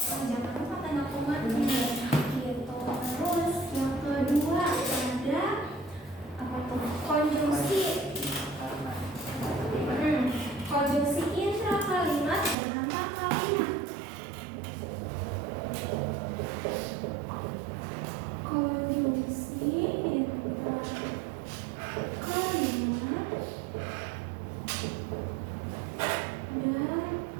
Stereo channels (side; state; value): left; drops out; at 12.6 s